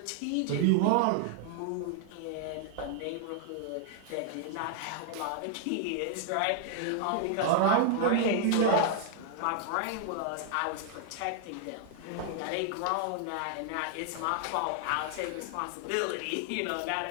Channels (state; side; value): different; both; correlation 0.00